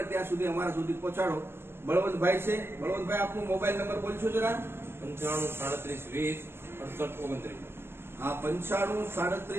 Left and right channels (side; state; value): left; late; 0.11 ms